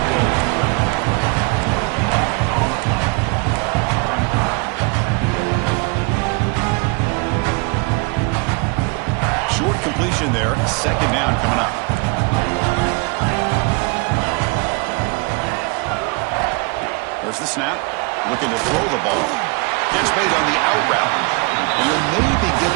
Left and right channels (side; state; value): left; quieter; 29.8 dB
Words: doing. Short completion there. 2nd down coming up. There's the snap. Looking to throw the ball. Catch made on the out route. And he'll maybe get